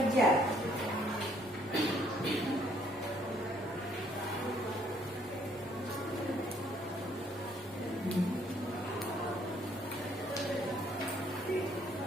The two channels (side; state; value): both; normal; correlation 0.65